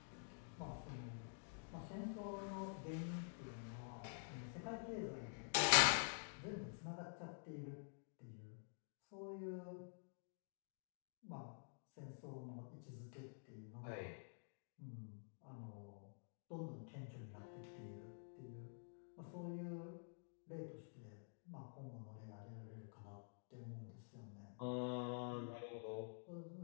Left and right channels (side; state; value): right; silent; digital silence